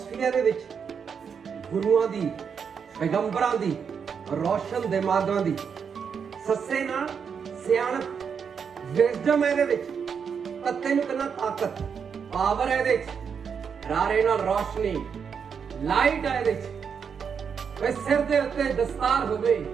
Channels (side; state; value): left; quieter; 6.7 dB